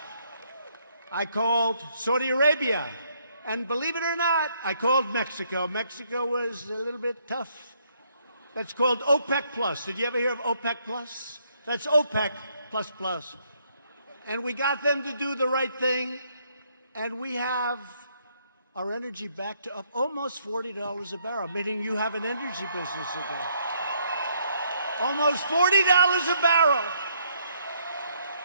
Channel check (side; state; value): both; inverted; correlation -0.70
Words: I called Saudi Arabia. And believe it or not, I called Mexico. Mexico was a little bit tough. That's called OPEC Plus. Did you ever hear of OPEC Plus? That's OPEC plus plus. And we got them to do the right thing. And we have our energy back to up almost $40 a barrel, meaning you have an energy business again. Almost $40 a barrel.